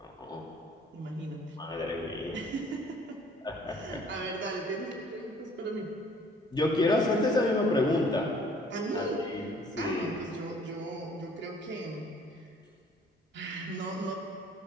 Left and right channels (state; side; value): normal; both; correlation 0.57